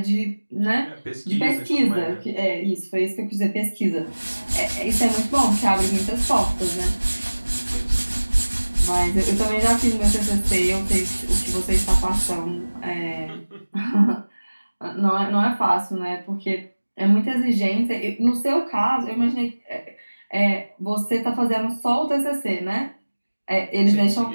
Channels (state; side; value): inverted; both; correlation -1.00